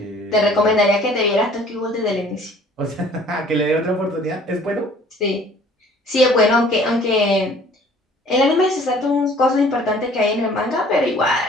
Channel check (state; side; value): normal; both; correlation 0.53